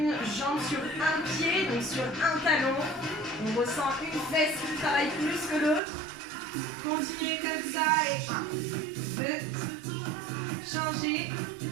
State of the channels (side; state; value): left; drops out; at 5.8 s